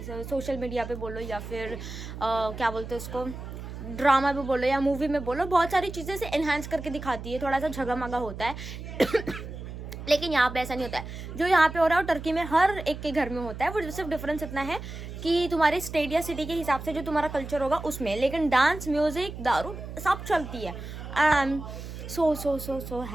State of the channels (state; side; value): noise; right; hum, 10 dB below the sound